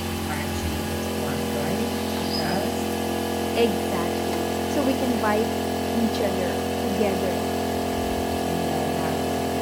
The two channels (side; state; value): both; identical; correlation 1.00